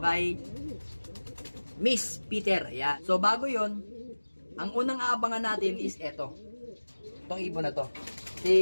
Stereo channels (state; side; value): inverted; both; correlation -1.00